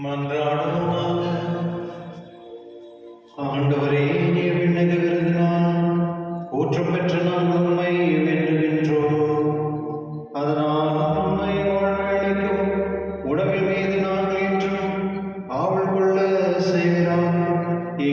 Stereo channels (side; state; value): both; identical; correlation 1.00